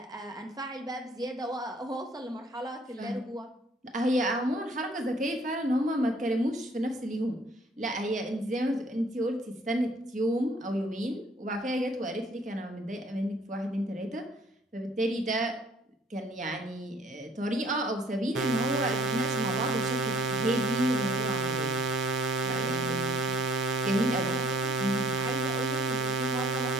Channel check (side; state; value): both; normal; correlation 0.58